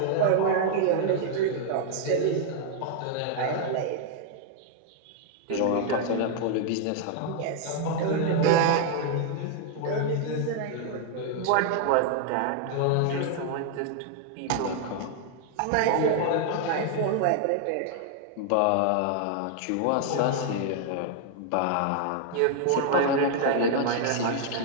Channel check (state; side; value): different; both; correlation 0.00